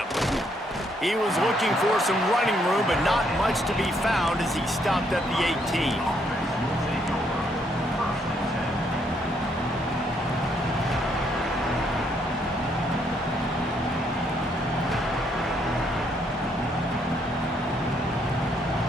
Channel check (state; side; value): normal; both; correlation 0.72